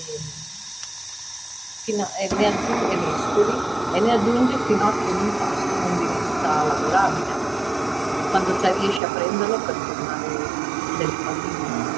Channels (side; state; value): left; drops out; at 9.0 s